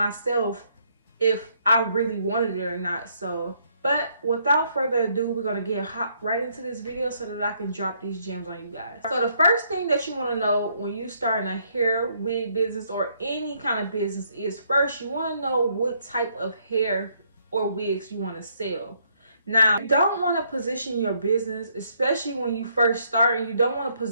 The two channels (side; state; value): both; inverted; correlation -0.70